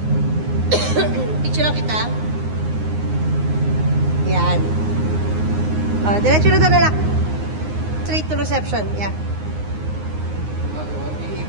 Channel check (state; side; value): late; left; 9.6 ms